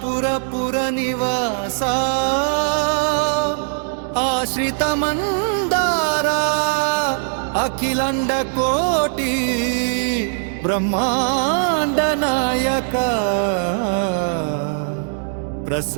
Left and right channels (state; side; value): silent; left; digital silence